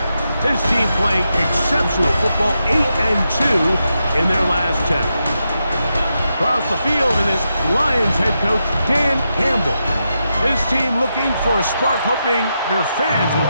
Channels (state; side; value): inverted; both; correlation -0.86